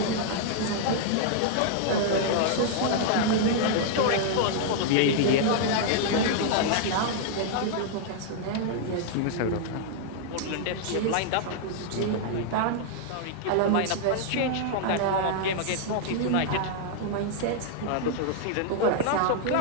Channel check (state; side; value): different; both; correlation -0.01